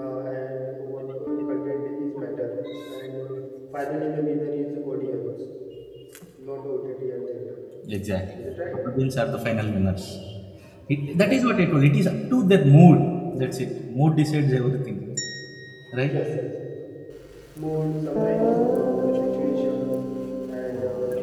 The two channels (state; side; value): identical; both; correlation 1.00